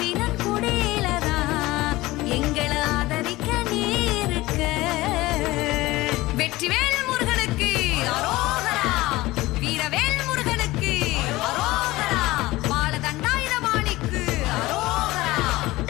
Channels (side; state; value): right; quieter; 19.0 dB